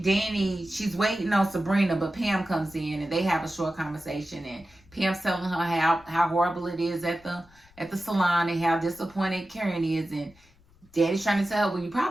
Danny, she's waiting on Sabrina, but Pam comes in and they have a short conversation. And Pam's telling her how horrible it is at the salon and how disappointed Karen is. And Daddy's trying to tell her, well, you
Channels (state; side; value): noise; left; rumble, 29 dB below the sound